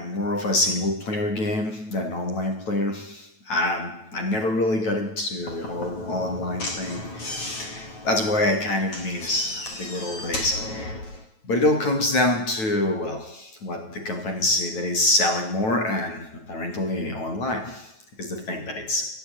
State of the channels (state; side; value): late; right; 9.2 ms